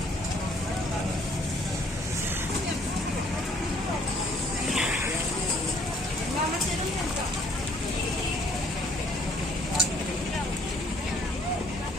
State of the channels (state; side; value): normal; both; correlation 0.61